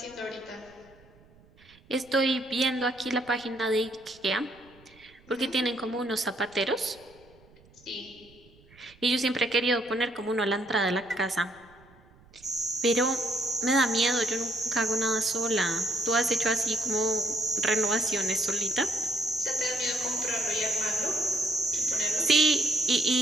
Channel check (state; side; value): noise; right; rumble, 28 dB below the sound